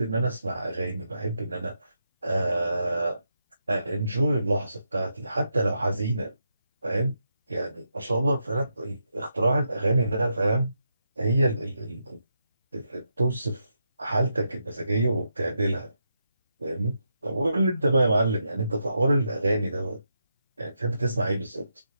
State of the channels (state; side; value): inverted; both; correlation -0.83